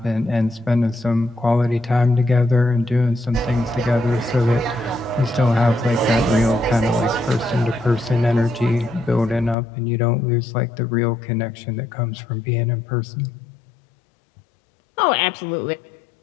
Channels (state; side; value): drops out; right; at 9.6 s